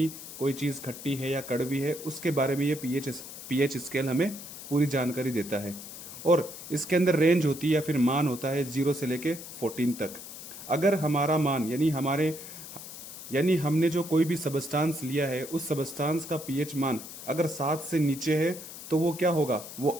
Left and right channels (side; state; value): left; noise; hiss, 12 dB below the sound